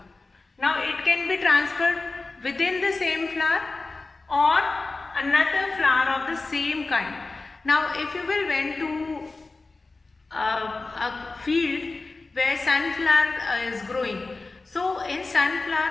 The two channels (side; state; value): right; quieter; 3.6 dB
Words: Now it can be transferred within the same flower or another flower of the same kind. Now if you will went to a field where sunflower is growing, so in